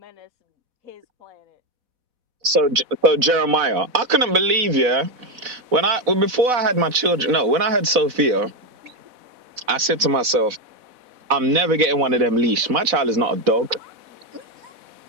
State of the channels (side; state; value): left; late; 4.1 ms